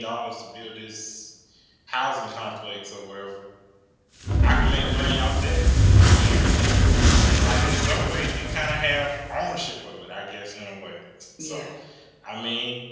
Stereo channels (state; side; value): identical; both; correlation 1.00